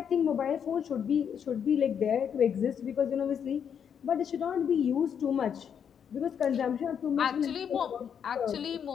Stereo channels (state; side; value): quieter; right; 7.9 dB